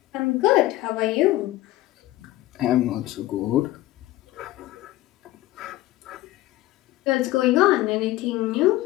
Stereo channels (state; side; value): quieter; right; 16.7 dB